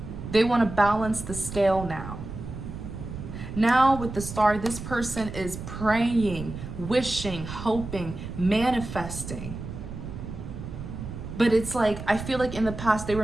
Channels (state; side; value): noise; right; rumble, 9 dB below the sound